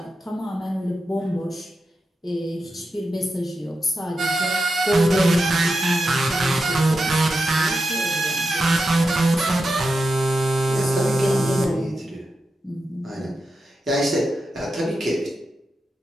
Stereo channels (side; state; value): both; normal; correlation 0.89